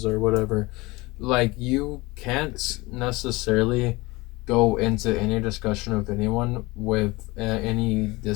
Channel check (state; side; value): quieter; right; 22.6 dB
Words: or whatever. Like, you can't necessarily go into any discussion of anyone with any